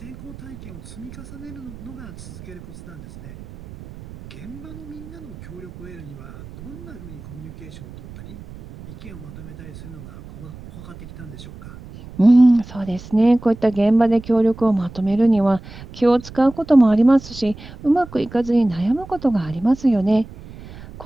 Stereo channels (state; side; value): noise; right; rumble, 16 dB below the sound